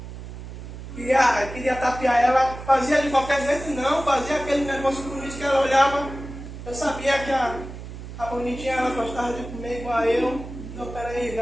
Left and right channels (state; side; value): noise; right; hum, 11 dB below the sound